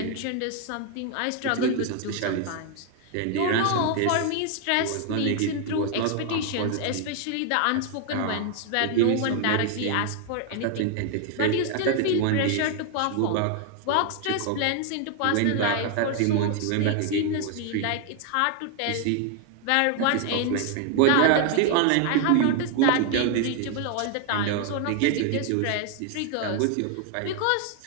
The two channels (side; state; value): both; different; correlation 0.00